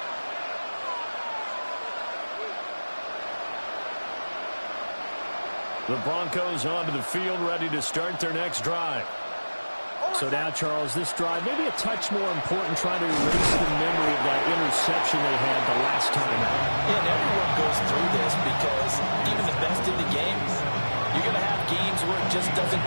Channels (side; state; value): both; inverted; correlation -1.00